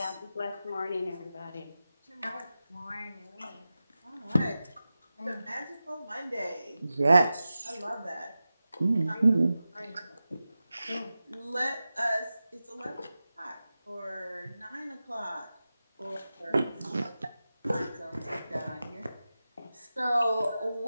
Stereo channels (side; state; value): both; inverted; correlation -0.94